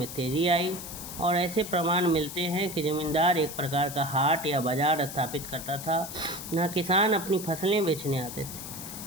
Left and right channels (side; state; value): left; noise; hiss, 10 dB below the sound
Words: तेजी आई, और ऐसे प्रमाण मिलते हैं कि ज़मींदार एक प्रकार का हाट या बाज़ार स्थापित करता था, जहाँ किसान अपनी फसलें बेचने आते